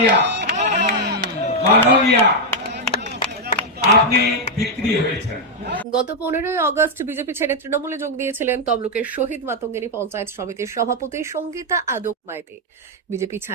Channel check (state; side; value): normal; both; correlation 0.00